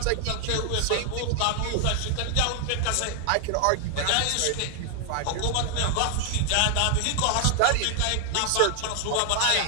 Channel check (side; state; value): both; different; correlation 0.00